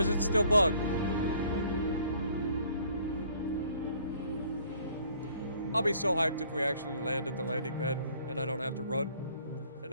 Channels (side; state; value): both; inverted; correlation -0.59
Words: it still bugged? I'll be so hyped if we actually land at the landing pad and I don't have to run